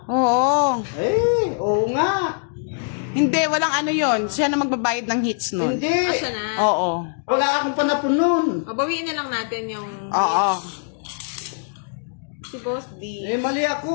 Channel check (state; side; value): silent; right; digital silence